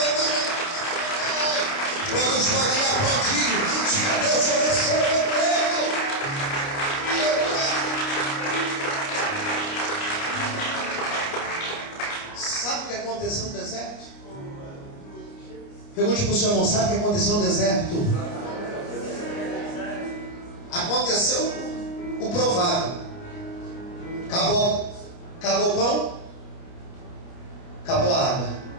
Quando podem aplaudir, diga: Deus, eu recebo o emprego. Sabe o que aconteceu no deserto? Pergunte para o seu irmão: sabe o que aconteceu no deserto? Aconteceu o provável. Acabou o pão, acabou a água.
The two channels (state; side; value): late; right; 29 ms